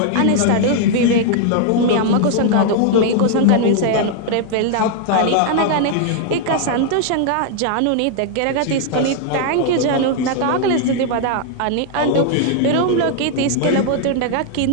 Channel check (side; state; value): both; different; correlation 0.00